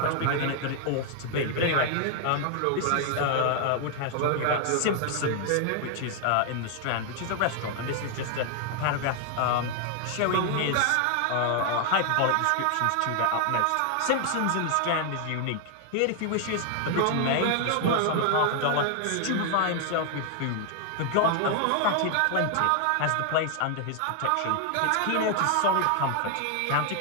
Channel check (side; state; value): both; different; correlation 0.00